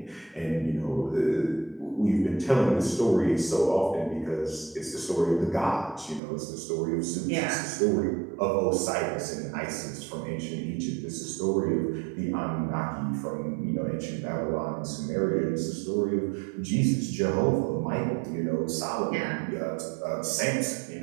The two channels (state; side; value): drops out; left; at 6.2 s